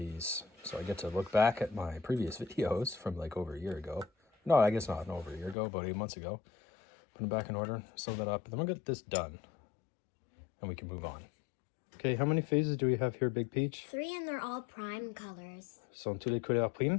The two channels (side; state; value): right; drops out; at 5.6 s